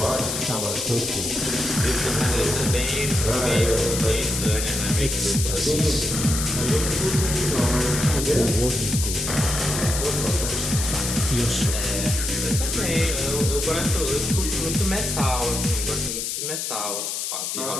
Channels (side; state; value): left; noise; hiss, 3 dB below the sound